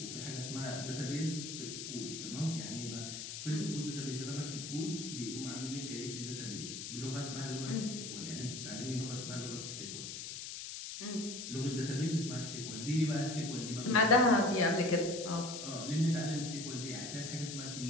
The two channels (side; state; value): left; noise; hiss, 7 dB below the sound